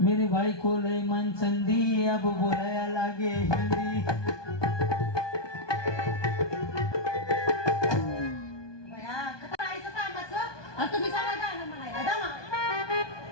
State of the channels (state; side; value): late; right; 1.2 ms